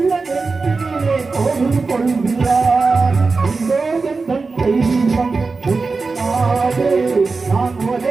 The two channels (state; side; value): quieter; left; 4.2 dB